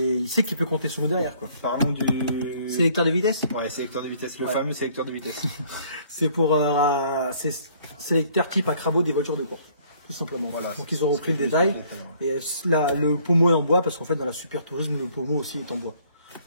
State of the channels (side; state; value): both; inverted; correlation -0.60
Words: il sait qu'il peut compter sur nous derrière, quoi. Parlons du sélecteur de vitesse. Ouais, sélecteur de vitesse, le fameux sélecteur de vitesse. C'est pour sélecteur type Acrabo des voitures de course, tout simplement. Voilà, donc ils ont repris le détail. Et le pommeau est en bois parce qu'en fait dans la Super Tourisme le pommeau aussi est en bois.